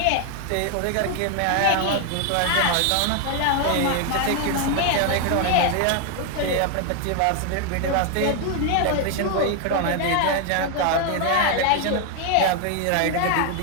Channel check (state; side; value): different; both; correlation 0.01